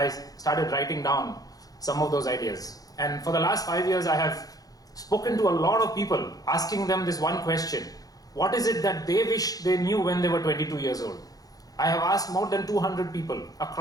started writing down some of those ideas. And for the last 5 years, I have spoken to a lot of people, asking them this one question: what is it that they wish they knew when they were 22 years old? I have asked more than 200 people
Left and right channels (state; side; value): late; right; 0.18 ms